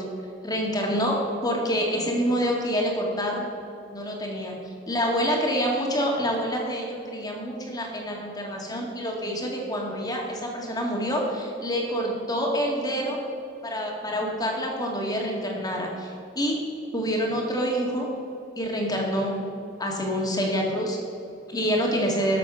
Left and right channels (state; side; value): normal; both; correlation 0.36